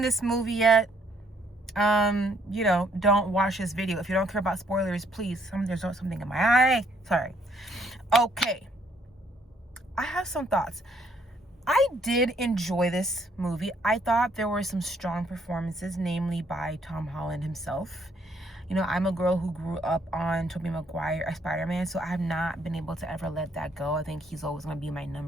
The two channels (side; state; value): both; normal; correlation 0.67